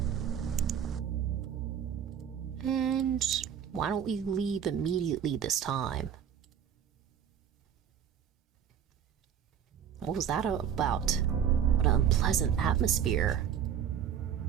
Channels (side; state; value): left; quieter; 8.7 dB